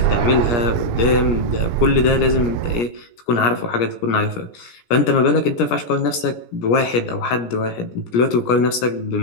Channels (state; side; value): late; right; 17 ms